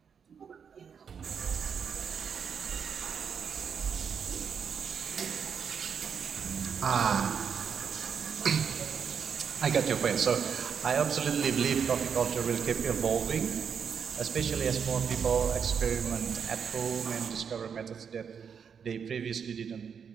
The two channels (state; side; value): quieter; left; 6.9 dB